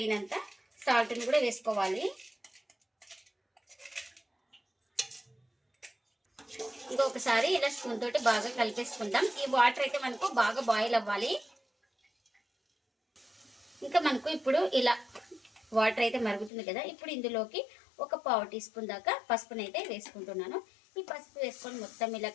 సాల్ట్ని కూడా వేసుకోవాలి. ఇంకొకసారి ఇలా స్పూన్ తోటి బాగా కలిపేసుకుందాం. ఈ వాటర్ అయితే మనకు బాగా బాయిల్ అవ్వాలి. ఇంకా మనకు ఇప్పుడు ఇలా వాటర్ అయితే మరుగుతుంది కదా, ఇప్పుడు ఇందులోకి 1/4 టీ స్పూన్ దాకా పసుపుని అయితే వేసుకుంటున్నాను. ఈ పసుపు వేసుకొని మొత్తం ఇలా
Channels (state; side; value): drops out; right; at 16.5 s